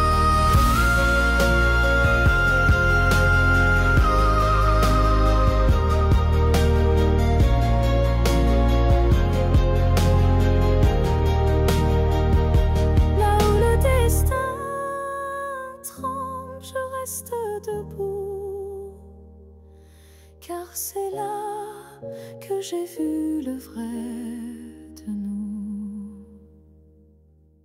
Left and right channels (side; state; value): both; identical; correlation 1.00